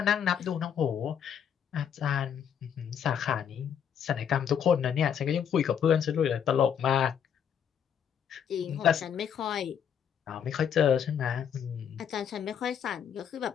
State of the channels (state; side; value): quieter; right; 8.4 dB